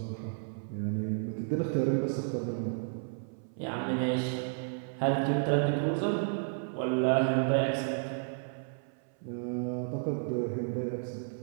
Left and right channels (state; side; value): silent; left; 56 dB below the other